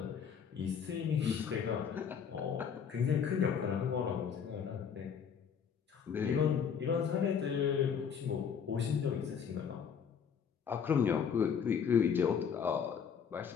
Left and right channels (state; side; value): quieter; right; 7.2 dB